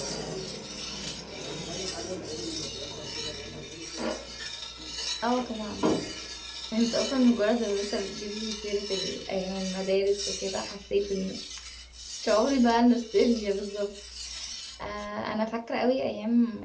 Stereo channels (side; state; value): both; identical; correlation 1.00